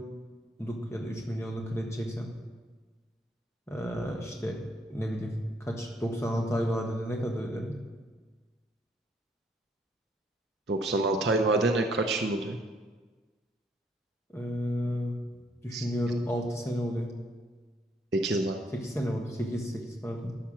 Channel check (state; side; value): normal; both; correlation 0.68